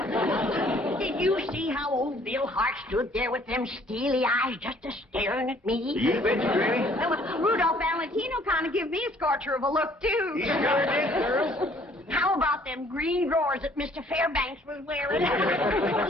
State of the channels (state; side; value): normal; both; correlation 0.59